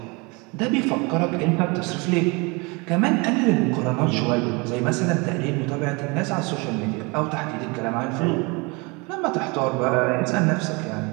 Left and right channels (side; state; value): left; quieter; 28.2 dB